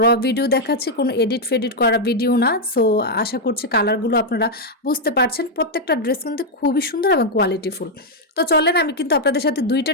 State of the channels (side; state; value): both; normal; correlation -0.01